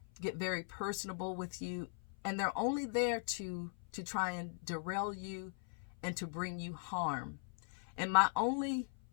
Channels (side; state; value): right; silent; 51 dB below the other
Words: get very personable with you, and they're only there to try and derail you and to bring you harm. And my only